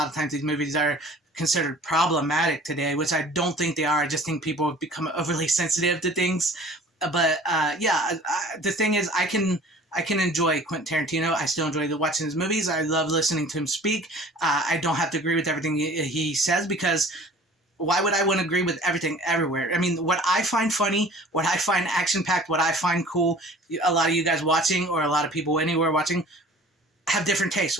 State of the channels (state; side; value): normal; both; correlation 0.47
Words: of times these movies are considered problematic today, which I don't think they are. I just think people have become overly sensitive to things. But yeah, the thing is, I can enjoy Quentin Tarantino. I still enjoy watching his movies. I love listening to him speak. I don't have to agree with everything he says, because why would I want to agree with everything everywhere? I mean, what I find funny, what I find action-packed, what I find cool, a lot of you guys watching, or a lot of people anywhere watching, have different tastes.